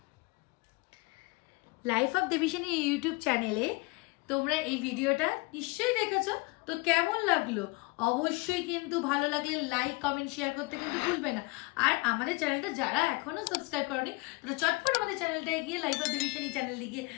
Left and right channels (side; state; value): right; quieter; 26.3 dB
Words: লাইফ অফ দেবীসেনী ইউটিউব চ্যানেলে তোমরা এই ভিডিওটা নিশ্চয়ই দেখেছো, তো কেমন লাগলো অবশ্যই কিন্তু ভালো লাগলে লাইক কমেন্ট শেয়ার করতে কিন্তু ভুলবে না। আর আমাদের চ্যানেলটা যারা এখনো সাবস্ক্রাইব করনি তারা চটপট আমাদের চ্যানেলটায় গিয়ে লাইফ অফ দেবীসেনী চ্যানেলে গিয়ে